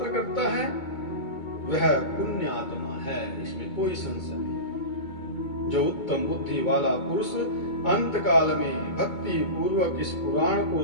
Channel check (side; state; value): right; late; 2.2 ms